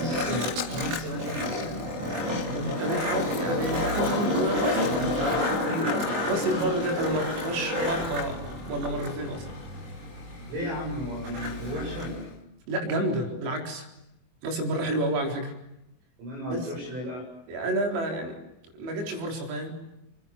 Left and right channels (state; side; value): late; left; 24 ms